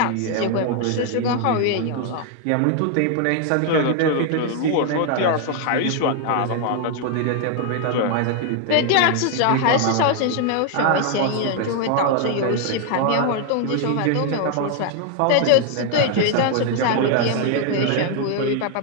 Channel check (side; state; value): both; different; correlation 0.01